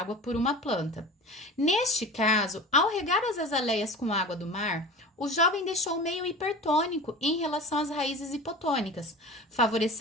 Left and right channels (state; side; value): normal; both; correlation 0.35